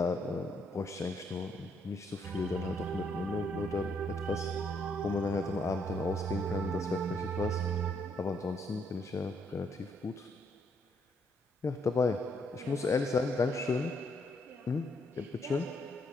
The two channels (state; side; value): normal; both; correlation 0.72